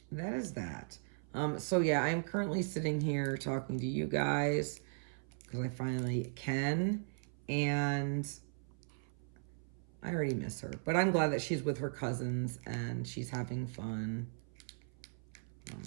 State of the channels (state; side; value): silent; left; 53 dB below the other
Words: that is that. So yeah, I'm currently sitting here talking to you guys because I finally can. And I already miss her. But I'm glad that she's with her cousins and she's having fun.